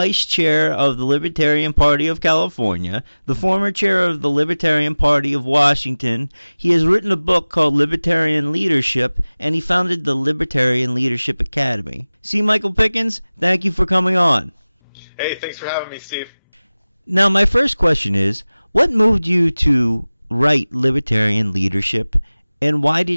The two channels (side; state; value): both; inverted; correlation -0.99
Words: chair of the Libertarian Party of California, the former chair of the Libertarian Party of Washington. He has written a book called Libertarian Leadership, and he founded the Libertarian Leadership Academy. C. Michael Pickens, thank you for coming on. Hey, thanks for having me, Steve. Now, my first question is, what moved you to write Libertarian Leadership, and why